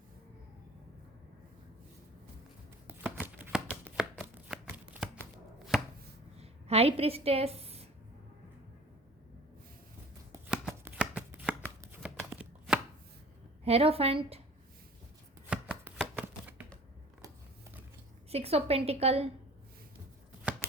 high priestess, hierophant, 6 of pentacles,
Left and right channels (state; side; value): normal; both; correlation 0.46